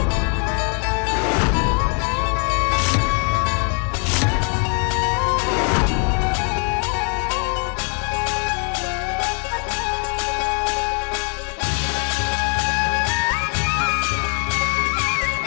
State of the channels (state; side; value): quieter; right; 38.5 dB